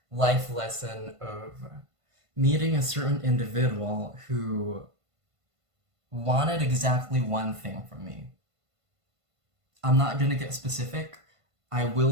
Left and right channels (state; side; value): late; left; 1.5 ms